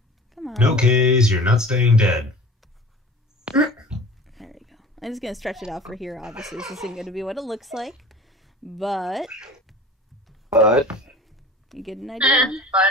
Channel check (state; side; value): normal; both; correlation 0.41